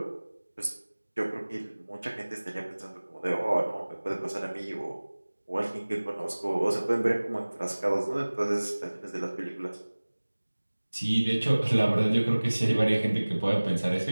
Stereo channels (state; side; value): inverted; both; correlation -1.00